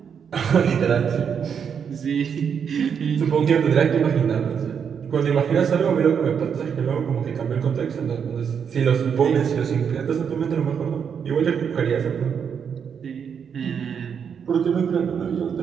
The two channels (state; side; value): quieter; left; 7.2 dB